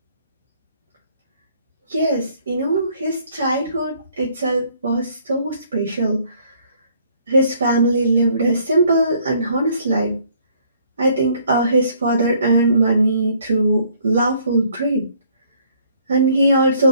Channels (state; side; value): inverted; both; correlation -0.63